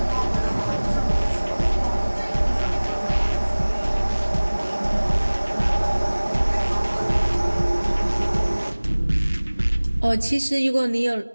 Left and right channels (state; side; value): inverted; both; correlation -1.00